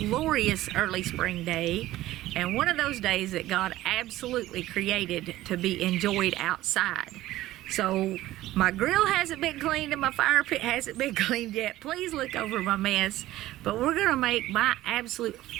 early spring day, and one of those days that God absolutely created to be enjoyed outside. So my grill hasn't been cleaned and my fire pit hasn't been cleaned yet. Please look over my mess. But we're gonna make my absolute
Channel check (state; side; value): quieter; left; 15.6 dB